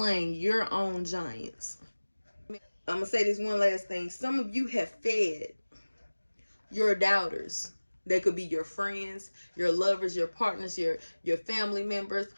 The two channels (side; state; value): both; inverted; correlation -1.00